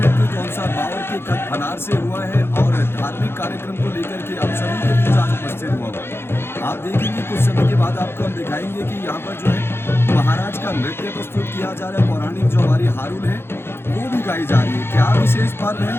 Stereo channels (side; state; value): right; late; 0.11 ms